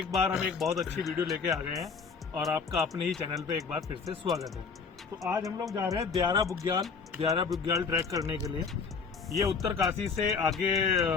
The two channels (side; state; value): right; quieter; 5.4 dB